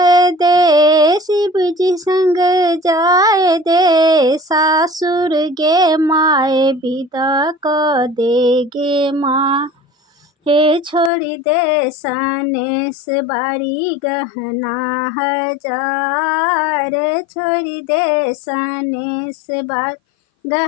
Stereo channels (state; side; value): drops out; right; at 11.1 s